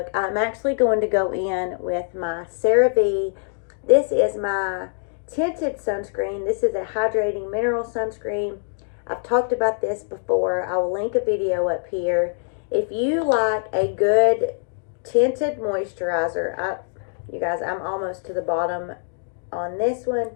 I'm actually going to go in with my CeraVe. This is my tinted sunscreen. This is a hydrating mineral sunscreen. I've talked about this before. I will link a video up here. If you like a good tinted moisturizer, you guys, I'm almost to the bottom on this one.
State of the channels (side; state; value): right; silent; digital silence